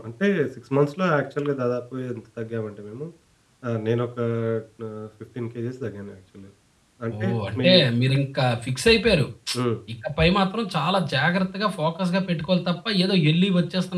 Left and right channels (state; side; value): identical; both; correlation 1.00